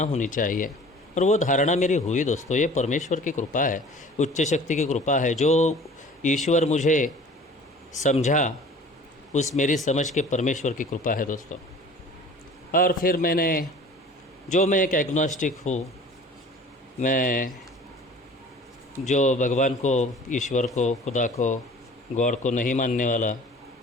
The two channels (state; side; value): normal; both; correlation 0.46